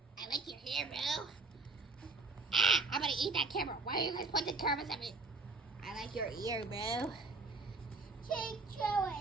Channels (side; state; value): left; quieter; 3.7 dB